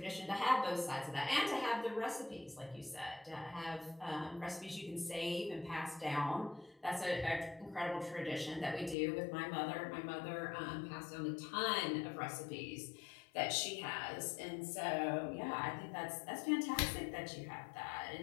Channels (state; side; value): drops out; right; at 9.0 s